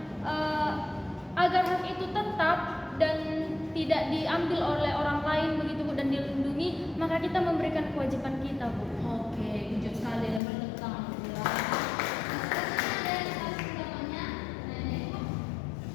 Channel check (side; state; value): right; drops out; at 10.4 s